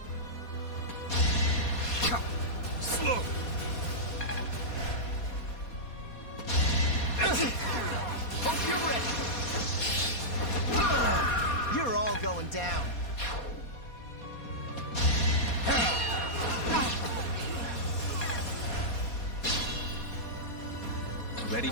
slow! Hope you're ready! You're all going down. Ready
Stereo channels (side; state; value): right; late; 4.2 ms